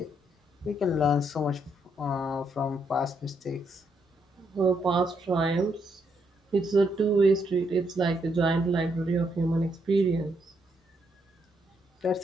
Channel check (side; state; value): both; normal; correlation 0.76